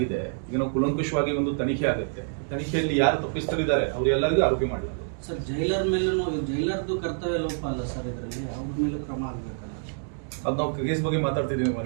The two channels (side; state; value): left; silent; digital silence